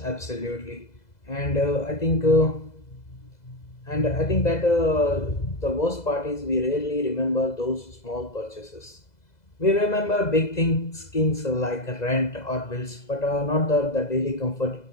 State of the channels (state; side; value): late; right; 2.0 ms